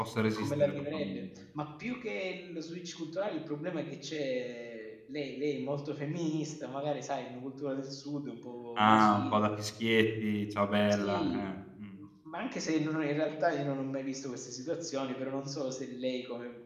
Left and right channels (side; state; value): both; identical; correlation 1.00